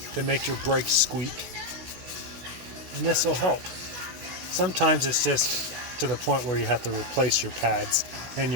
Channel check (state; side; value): late; left; 16 ms